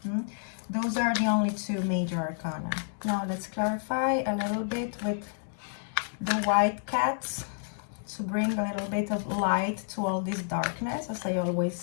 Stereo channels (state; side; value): silent; right; digital silence